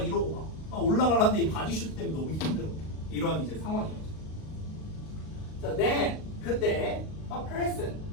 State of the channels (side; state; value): right; late; 38 ms